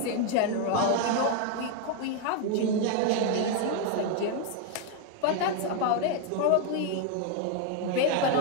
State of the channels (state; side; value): different; both; correlation 0.01